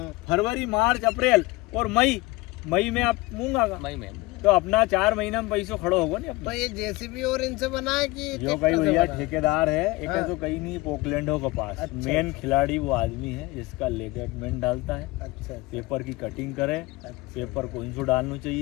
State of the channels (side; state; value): right; quieter; 21.3 dB